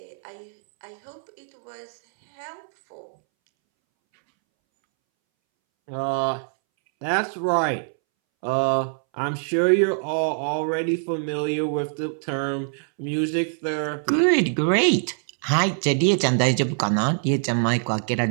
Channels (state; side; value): silent; left; 63 dB below the other